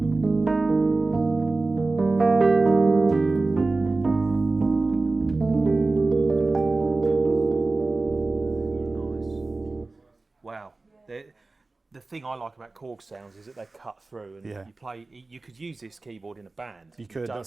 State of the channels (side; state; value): left; quieter; 3.4 dB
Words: Wow. The thing I like about Korg sounds is that they cut through, and Yeah. you play. You could use this keyboard in a band. You could, don't